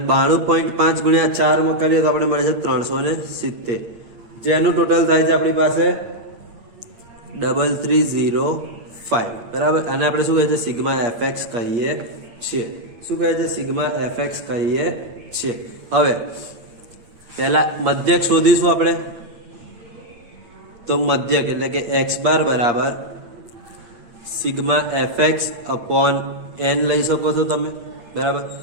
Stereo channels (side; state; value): left; late; 8.8 ms